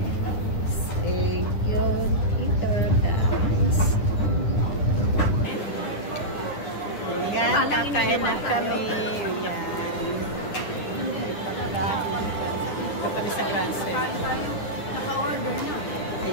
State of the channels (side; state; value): right; late; 9.8 ms